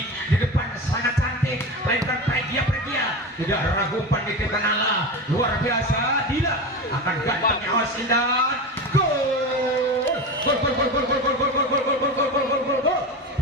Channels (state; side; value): normal; both; correlation 0.24